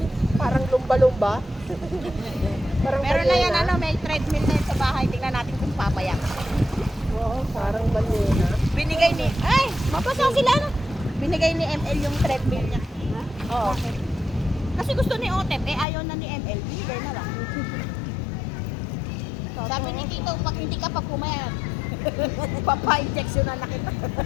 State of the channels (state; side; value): drops out; right; at 15.9 s